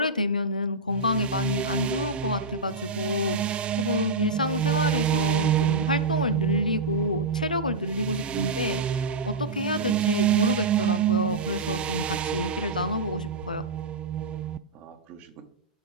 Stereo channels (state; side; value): quieter; left; 3.3 dB